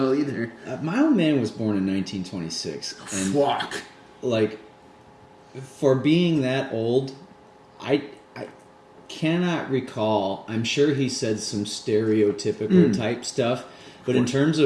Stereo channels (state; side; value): identical; both; correlation 1.00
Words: either. My old man was born in 1926. And Fuck. like, for being that old, I cannot recall. I'm sure he said some stereotypical type stuff, but in terms